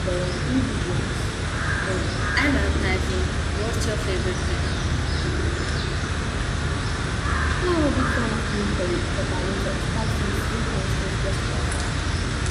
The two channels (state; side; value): identical; both; correlation 1.00